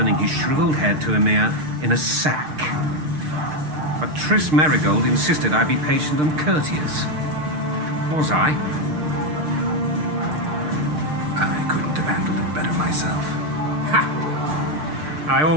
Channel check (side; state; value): left; late; 6.6 ms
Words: his shriveled head to Emir in a sack. But Triss Merigold insisted I be patient and courteous. Was I? I couldn't have handled it better myself. Ha! I